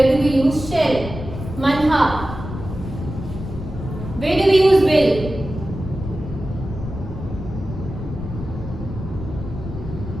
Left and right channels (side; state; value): left; noise; rumble, 9 dB below the sound